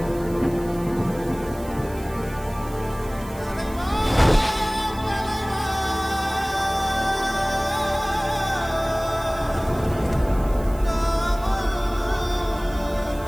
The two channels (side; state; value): right; noise; hiss, 20 dB below the sound